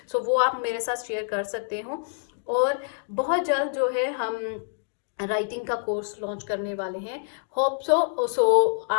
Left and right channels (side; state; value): right; silent; digital silence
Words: सो वो आप मेरे साथ शेयर कर सकते हो। और बहुत जल्द जो है हम राइटिंग का कोर्स लॉन्च करने वाले हैं। होप सो